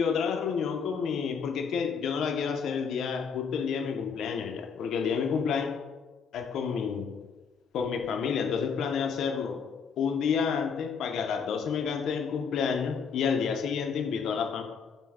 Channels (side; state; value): right; quieter; 6.2 dB